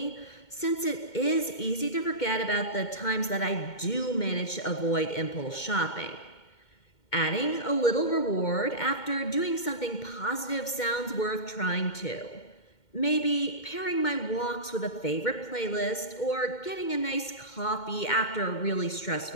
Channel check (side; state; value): right; late; 2.1 ms